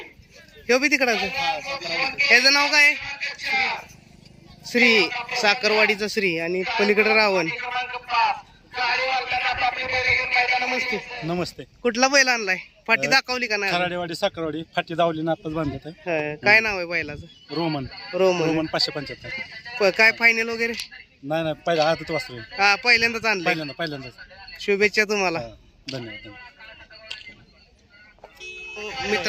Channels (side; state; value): both; identical; correlation 1.00